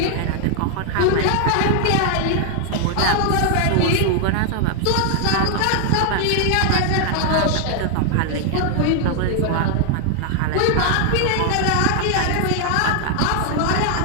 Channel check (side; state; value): both; different; correlation 0.00